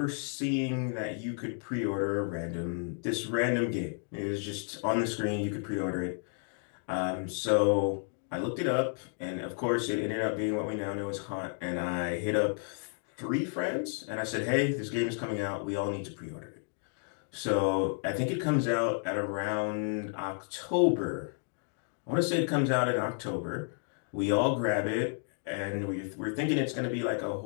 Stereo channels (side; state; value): right; silent; 57 dB below the other